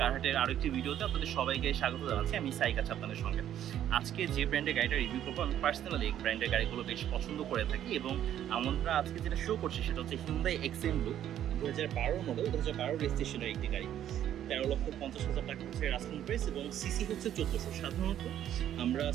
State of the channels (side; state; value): left; quieter; 11.0 dB